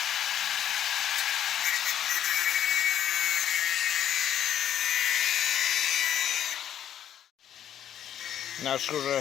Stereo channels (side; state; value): right; quieter; 10.3 dB